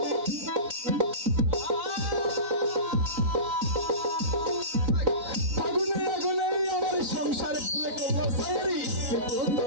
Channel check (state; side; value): late; left; 3.9 ms